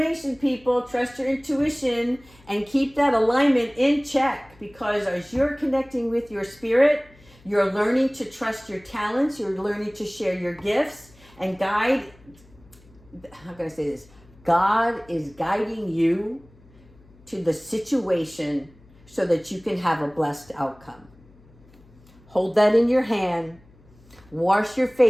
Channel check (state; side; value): noise; left; hum, 27 dB below the sound